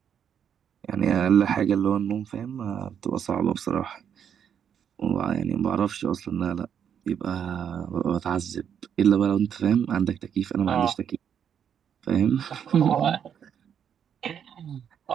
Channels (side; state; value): left; quieter; 8.4 dB